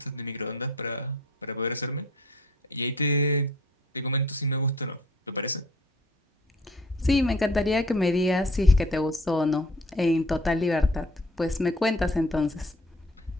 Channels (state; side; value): normal; both; correlation 0.53